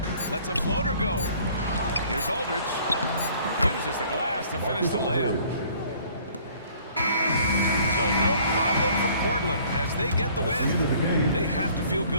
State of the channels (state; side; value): inverted; both; correlation -0.56